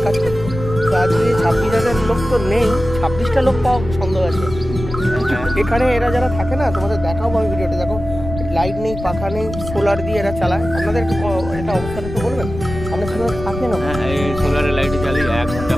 কাজ করতো। তো আজকে 26,000 লোক তো নেই, 26টা লোক পাওয়া সন্দেহ আছে এখানে। এরা যারা থাকে না, তোমাদের দেখাবো আমি ভিডিওতে, দেখো লাইট নেই, পাখা নেই, সোলার দিয়ে এরা চালায়। আপনাদের একটু এটা অবস্থাটা একটু বলবেন, আপনার সোলার থাকে না? হ্যাঁ, এই সোলারের লাইট চালিয়ে 1 ঘন্টা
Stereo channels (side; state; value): left; noise; rumble, 9 dB below the sound